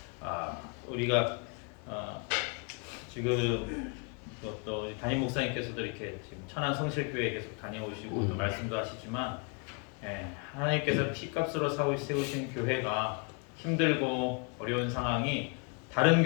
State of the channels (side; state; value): right; quieter; 35.6 dB